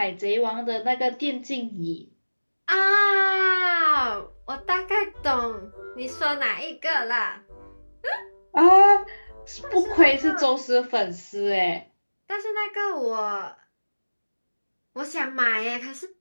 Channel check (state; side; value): inverted; both; correlation -1.00